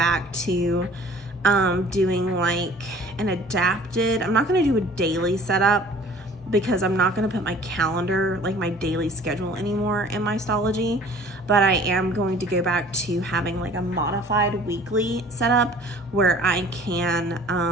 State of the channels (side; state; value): both; normal; correlation 0.50